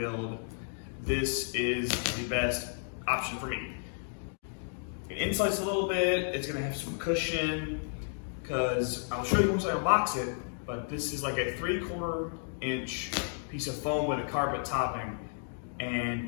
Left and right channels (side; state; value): right; silent; digital silence